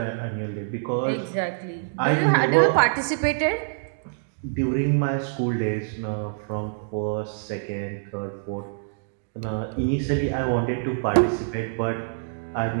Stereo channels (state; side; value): silent; left; digital silence